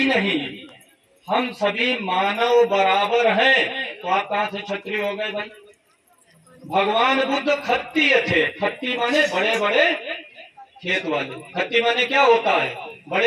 नहीं, हम सभी मानव बराबर हैं, तो आप कहां से क्षत्रिय हो गए भाई? भगवान बुद्ध खत्तीय थे। खत्ती माने बड़े बड़े खेत वाले। खत्ती माने क्या होता है?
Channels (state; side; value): identical; both; correlation 1.00